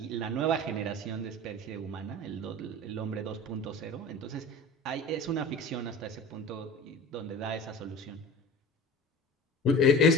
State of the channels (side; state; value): both; normal; correlation 0.36